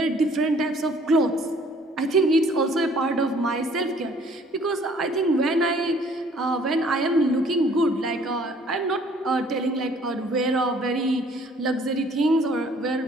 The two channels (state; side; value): normal; both; correlation 0.58